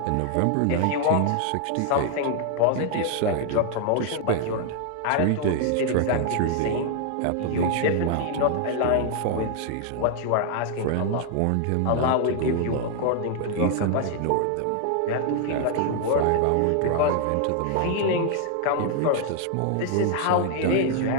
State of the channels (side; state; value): both; different; correlation 0.00